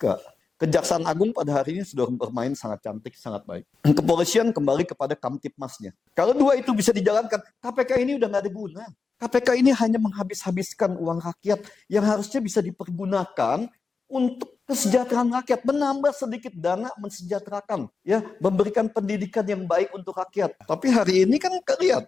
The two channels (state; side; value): quieter; right; 4.7 dB